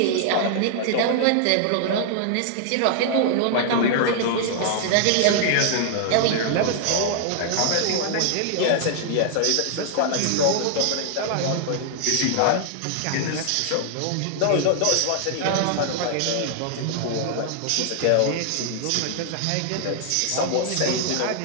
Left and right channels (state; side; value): different; both; correlation -0.01